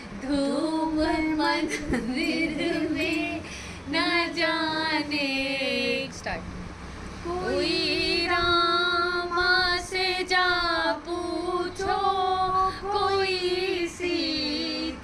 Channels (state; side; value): identical; both; correlation 1.00